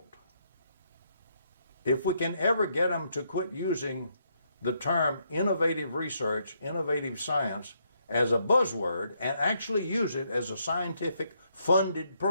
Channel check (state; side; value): inverted; both; correlation -0.74